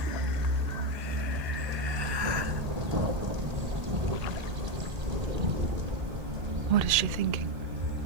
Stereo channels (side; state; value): left; late; 1.8 ms